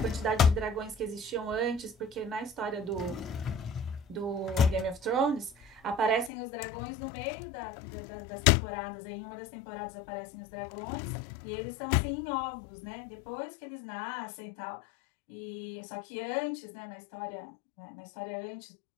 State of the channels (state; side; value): drops out; right; at 6.3 s